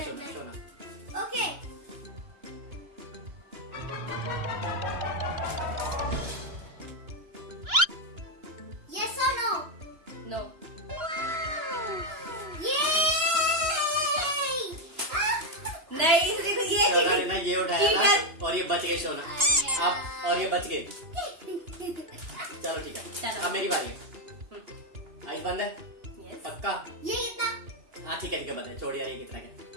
शोना, मैं। शोना। ओके ओके यस और नो नो। नहीं देखो ये शोना ने ना ये उठाया ठीक था है। और ये बच गए शोना। आप और ये बच गए। चलो ठीक है, चलो। अब मेरी बारी है। आइस बंद है यस। पक्का? ये कितना हाँ ठीक है बंद है। छोड़ यार, ये कितना क्या?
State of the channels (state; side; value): late; left; 2.9 ms